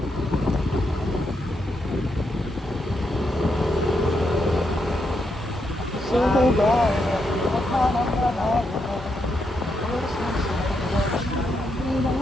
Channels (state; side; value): normal; both; correlation 0.81